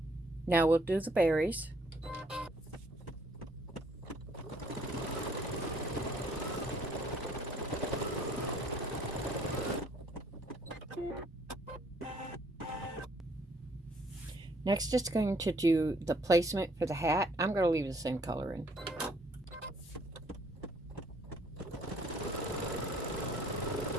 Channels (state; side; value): normal; both; correlation 0.63